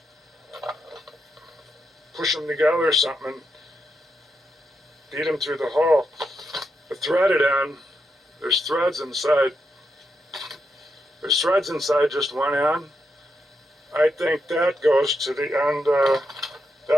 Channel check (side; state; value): both; normal; correlation 0.83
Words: push them together or something and beat them through the hole. The threaded end, there's threads inside. There's threads inside just one end. I think that goes to the end,